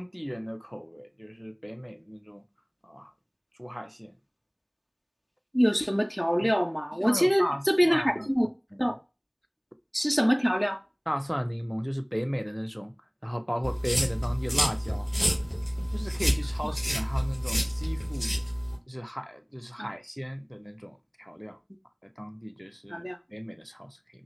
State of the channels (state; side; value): identical; both; correlation 1.00